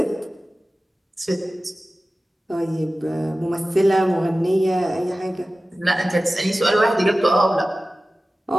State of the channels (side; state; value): both; normal; correlation 0.96